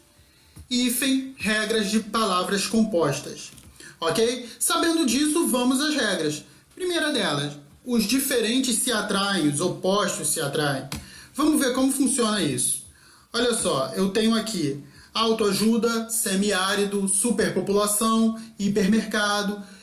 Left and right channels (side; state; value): both; identical; correlation 1.00